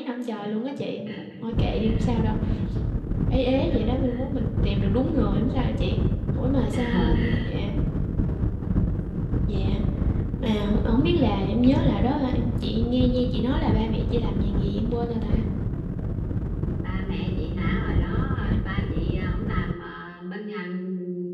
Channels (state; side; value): identical; both; correlation 1.00